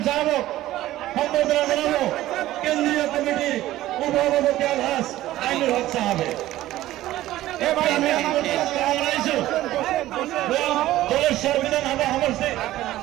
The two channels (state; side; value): quieter; left; 15.1 dB